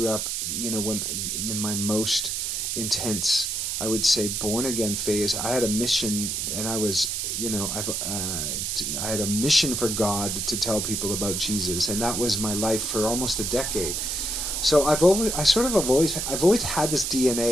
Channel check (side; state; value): right; noise; hiss, 1 dB below the sound